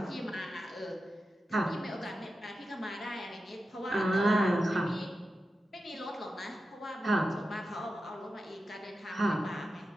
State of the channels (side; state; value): both; normal; correlation 0.91